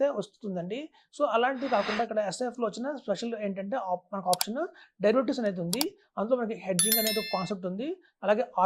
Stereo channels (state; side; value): identical; both; correlation 1.00